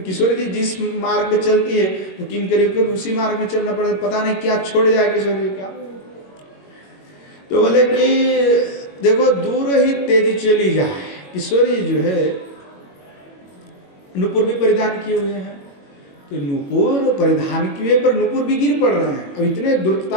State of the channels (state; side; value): late; right; 21 ms